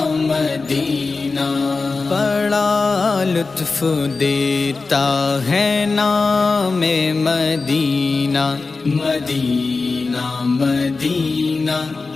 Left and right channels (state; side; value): quieter; right; 4.0 dB